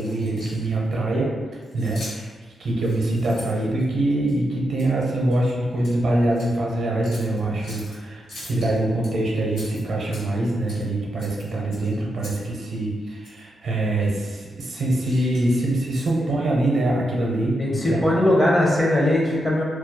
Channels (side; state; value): both; normal; correlation 0.84